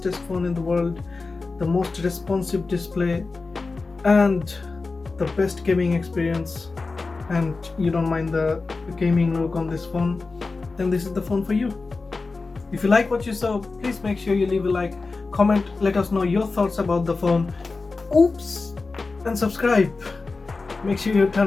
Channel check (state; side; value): quieter; right; 3.9 dB